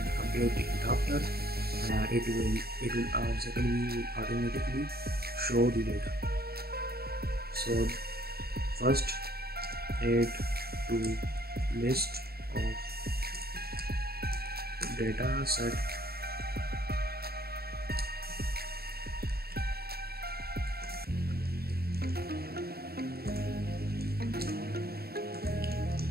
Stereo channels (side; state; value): left; late; 0.45 ms